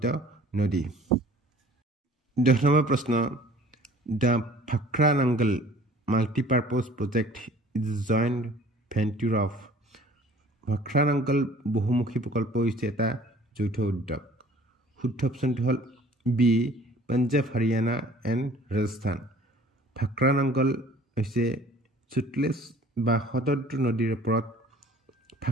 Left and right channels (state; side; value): normal; both; correlation 0.51